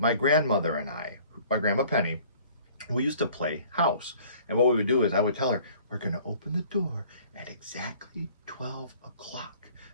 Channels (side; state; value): both; inverted; correlation -0.53